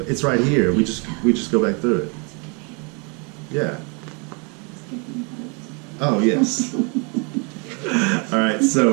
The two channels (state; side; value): quieter; left; 33.6 dB